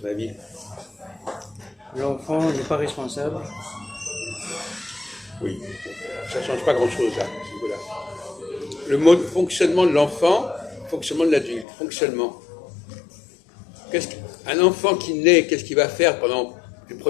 ton avis? L'enfant n'est pas responsable. Oui, ça ne change pas grand-chose là, à ce niveau-là. Le mode fonctionnement de l'enfant, fonctionnement de l'adulte, fonctionnement. Un enfant qui naît, qu'est-ce qu'il va faire pendant les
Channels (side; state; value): right; drops out; at 11.7 s